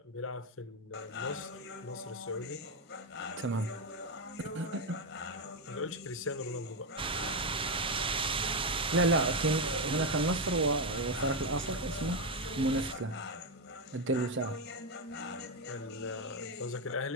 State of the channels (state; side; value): normal; both; correlation 0.07